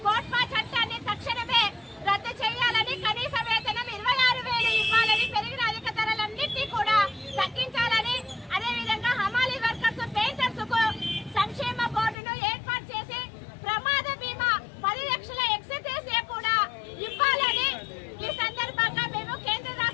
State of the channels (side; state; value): right; drops out; at 12.2 s